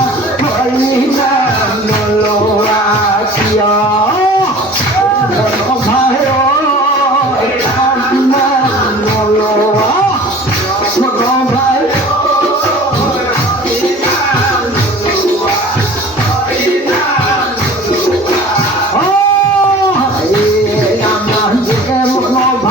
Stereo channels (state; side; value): normal; both; correlation 0.44